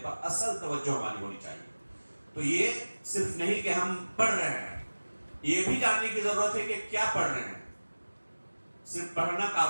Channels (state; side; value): inverted; both; correlation -1.00